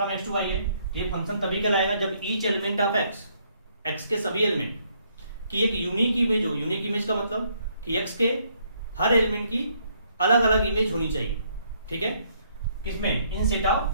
x to y है, ये फंक्शन तभी कहलाएगा जब ईच एलिमेंट ऑफ x के सभी एलिमेंट की एक यूनिक इमेज हो। यूनिक इमेज का मतलब कि x के हर एलिमेंट की अलग अलग इमेज होनी चाहिए, ठीक है, किसमें? इन सेट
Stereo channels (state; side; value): inverted; both; correlation -0.70